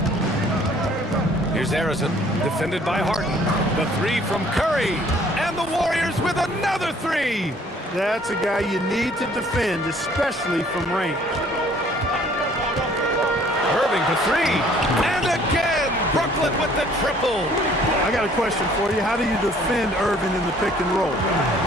Here's Harrison, defended by Harden. The 3 from Curry. And the Warriors with another 3. That's a guy you need to defend, especially from range. Irving for 3. And again, Brooklyn with the triple. I got a question for you. How do you defend Irving in the pick and roll?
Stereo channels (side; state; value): both; normal; correlation 0.58